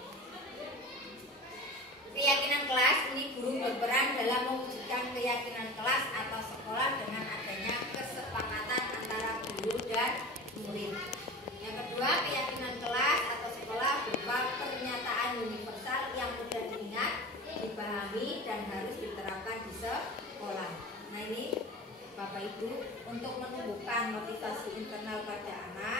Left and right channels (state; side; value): normal; both; correlation 0.33